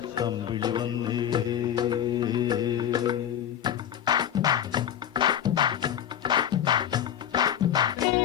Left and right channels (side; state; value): right; quieter; 9.9 dB